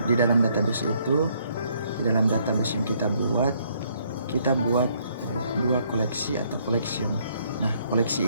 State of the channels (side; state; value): both; inverted; correlation -0.68